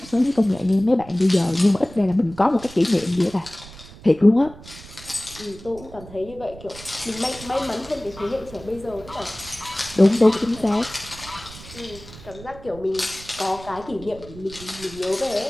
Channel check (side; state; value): right; noise; rumble, 17 dB below the sound